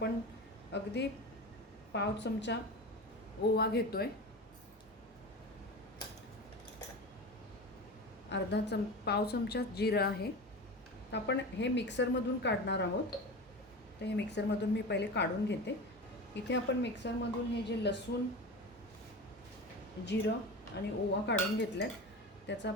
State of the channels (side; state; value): both; normal; correlation 0.29